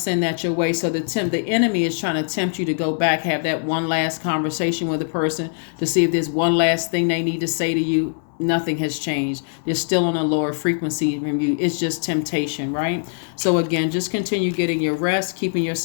that your way. So the enemy is trying to tempt you to go back, have that one last conversation with a person to see if there's one last thing they need to say to you. Nothing has changed. They're still on a lower frequency from you. It's just temptation, right? So again, just continue getting your rest, keeping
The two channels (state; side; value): silent; right; digital silence